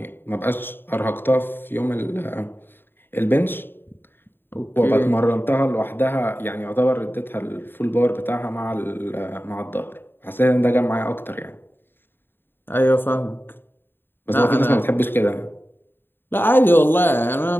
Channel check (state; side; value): late; right; 0.10 ms